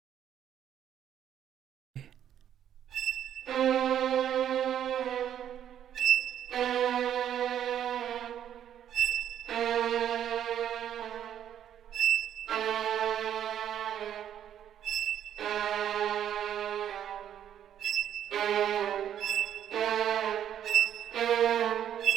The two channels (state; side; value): quieter; left; 10.1 dB